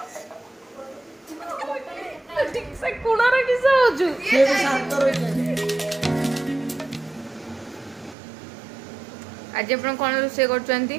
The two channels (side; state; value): left; drops out; at 8.2 s